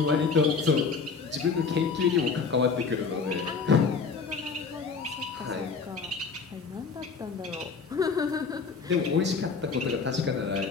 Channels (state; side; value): quieter; right; 5.1 dB